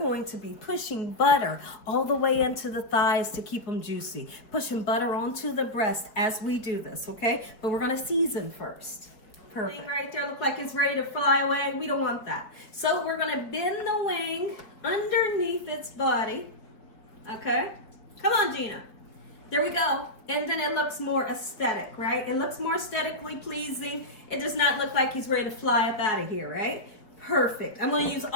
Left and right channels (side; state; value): right; late; 4.7 ms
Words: to be pushing butter all the way into the thighs to keep them juicy. Pushing butter onto the breast as we do this, okay? But we're going to season first. Perfect. Right there look like it's ready to fly away. We don't want that. So we're going to bend the wing underneath its body. Okay? Come on, Gina. There we go. And then it looks more aesthetic, right? It looks more aesthetically pleasing. It does not look like he's ready to fly up out of here, right? Perfect. I'm going to use